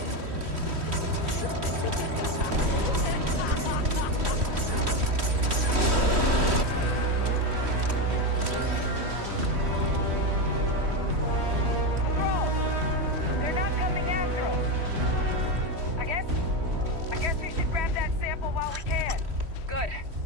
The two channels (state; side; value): late; left; 3.1 ms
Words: They're not coming after us. I guess we should grab that sample while we can. Good.